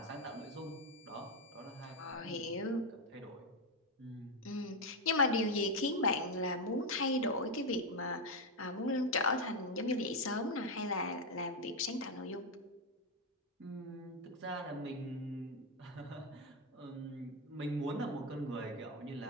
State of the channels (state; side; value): normal; both; correlation 0.05